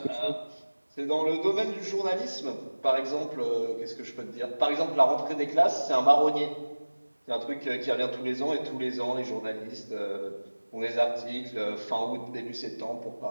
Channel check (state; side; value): inverted; both; correlation -1.00